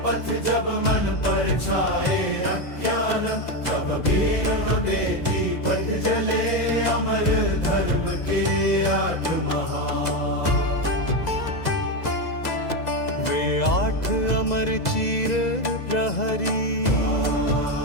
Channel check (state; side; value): late; right; 2.0 ms